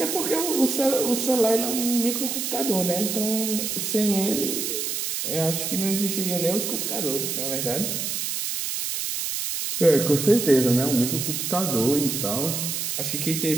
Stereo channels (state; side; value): noise; right; hiss, 2 dB below the sound